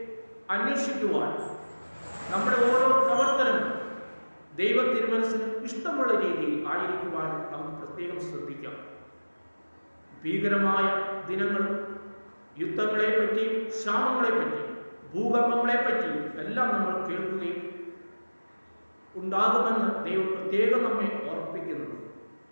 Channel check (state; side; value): inverted; both; correlation -1.00